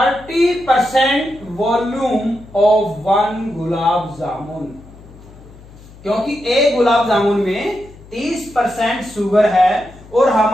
volume of 1 gulab jamun. क्योंकि एक गुलाब जामुन में 30% शुगर है और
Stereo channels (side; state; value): left; noise; hum, 21 dB below the sound